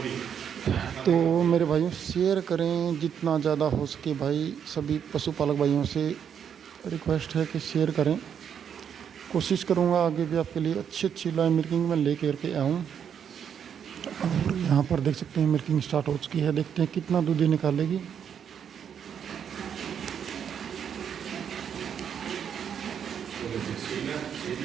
भी। तो मेरे भाइयों शेयर करें जितना ज़्यादा हो सके भाई। सभी पशुपालक भाइयों से रिक्वेस्ट है कि शेयर करें। कोशिश करूँगा आगे भी आपके लिए अच्छी अच्छी लाइव मिल्किंग में ले करके आऊँ। और यहाँ पर देख सकते हैं मिल्किंग स्टार्ट हो चुकी है। देखते हैं कितना दूध ये निकालेगी।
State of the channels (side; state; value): left; quieter; 8.1 dB